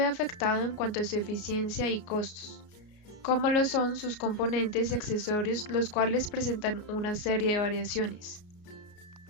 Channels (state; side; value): late; right; 33 ms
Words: afectado en cuanto a su eficiencia y costos, como lo son sus componentes y accesorios, los cuales presentan una serie de variaciones.